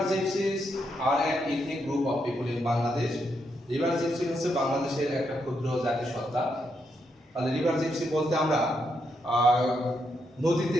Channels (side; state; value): both; normal; correlation 0.80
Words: gypsies are an ethnic group of people in Bangladesh. River gypsy হচ্ছে বাংলাদেশের একটা ক্ষুদ্র জাতিসত্তা। তাহলে রিভার জিপসি বলতে আমরা নদীতে